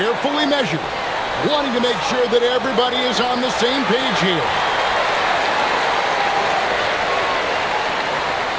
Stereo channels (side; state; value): both; identical; correlation 1.00